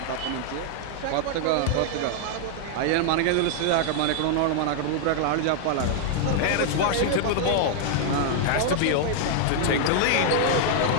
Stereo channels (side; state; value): both; different; correlation 0.00